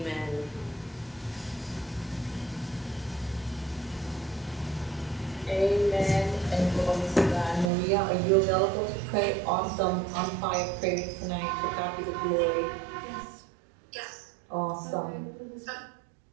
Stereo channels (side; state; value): left; drops out; at 7.7 s